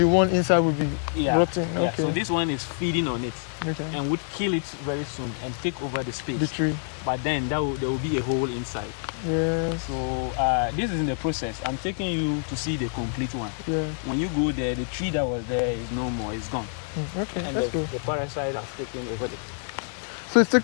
one inside will be rotting. Yeah. Okay. So this one is feeding on it, and would kill it very soon and take over the space. The tree. But then there will be a hole inside. Yeah. So this is in the process. I'm taking you to see the complete one. Yeah. When you go there, the tree that was there is no more. It's gone. Okay. And the parasite has taken over the. So it's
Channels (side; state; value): right; silent; 61 dB below the other